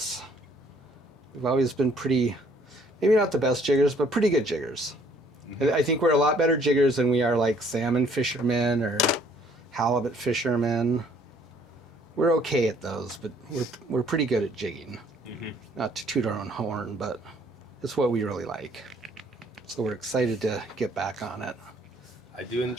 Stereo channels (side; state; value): both; normal; correlation 0.61